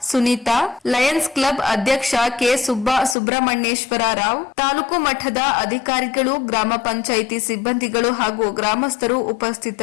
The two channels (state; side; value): drops out; right; at 3.2 s